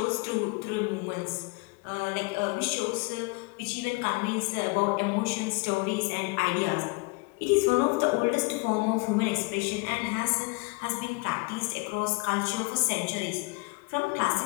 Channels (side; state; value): right; quieter; 28.4 dB